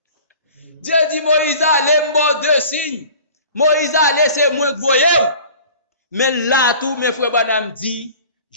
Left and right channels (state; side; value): inverted; both; correlation -0.44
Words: Dieu dit, Moïse allez, moi 2 signes. Moïse allez, c'est moi que vous voyez. Mais là, tout mes frères Branham dit,